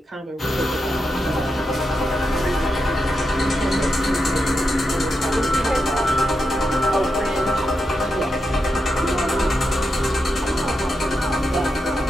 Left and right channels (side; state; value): both; normal; correlation 0.87